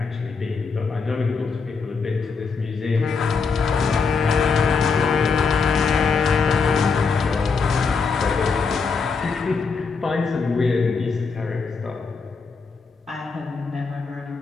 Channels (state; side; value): quieter; right; 5.0 dB